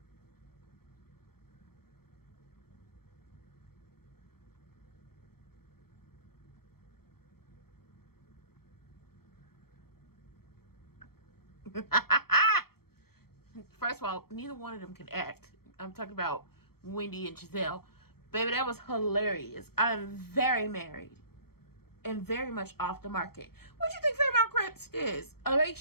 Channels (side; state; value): right; late; 0.95 ms